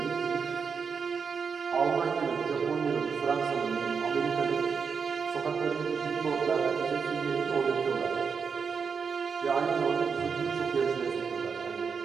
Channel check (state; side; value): quieter; left; 5.9 dB